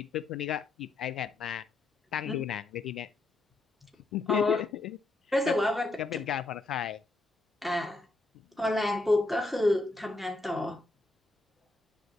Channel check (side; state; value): right; quieter; 3.0 dB